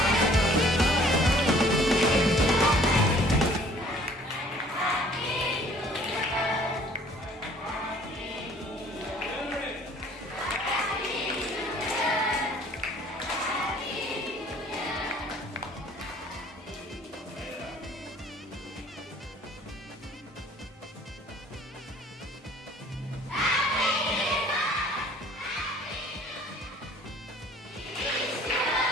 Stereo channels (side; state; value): both; normal; correlation 0.55